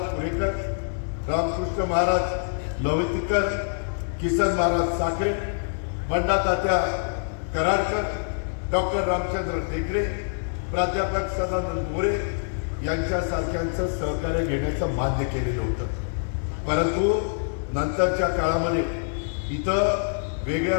पुणेकर, रामकृष्ण महाराज लवतीकर, किसन महाराज साखरे, बंडा तात्या कराडकर, डॉक्टर रामचंद्र टेकडे, प्राध्यापक सदानंद मोरे यांच्यासारख्यांचं सहकार्य घेण्याचं मान्य केलेलं होतं. परंतु नंतरच्या काळामध्ये इथं वेगळ्या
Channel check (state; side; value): silent; right; digital silence